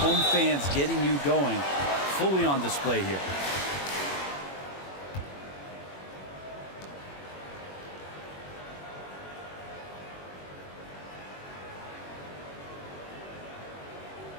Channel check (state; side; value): late; right; 21 ms